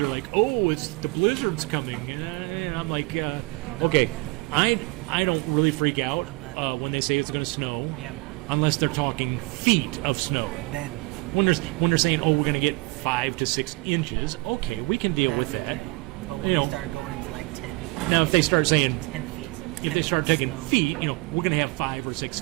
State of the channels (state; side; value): quieter; left; 24.8 dB